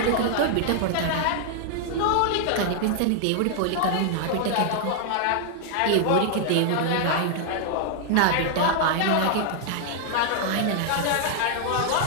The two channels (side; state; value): both; different; correlation 0.00